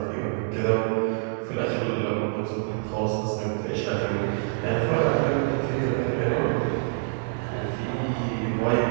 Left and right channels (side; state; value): left; silent; digital silence